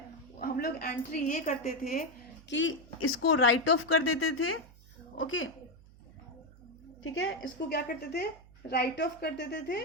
हम लोग एंट्री ये करते थे कि इसको राइट ऑफ कर देते थे। ओके, ठीक है, इसको क्या करते थे, राइट ऑफ कर देते थे,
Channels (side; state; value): right; noise; hum, 23 dB below the sound